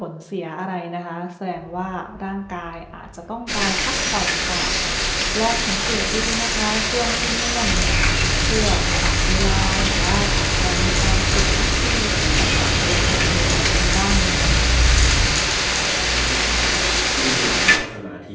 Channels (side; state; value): both; identical; correlation 1.00